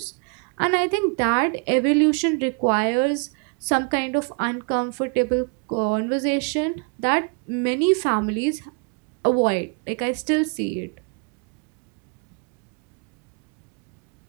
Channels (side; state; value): left; quieter; 35.7 dB